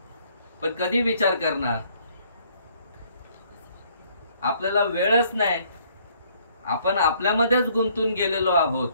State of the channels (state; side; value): inverted; both; correlation -0.63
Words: पण कधी विचार करणार? आपल्याला वेळच नाही, आपण आपल्यामध्येच गुंतून गेलेलो आहोत.